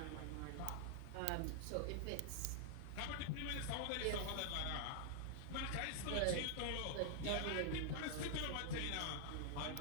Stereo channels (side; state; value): both; different; correlation 0.00